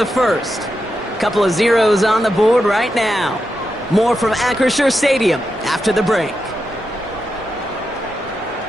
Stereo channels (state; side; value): normal; both; correlation 0.87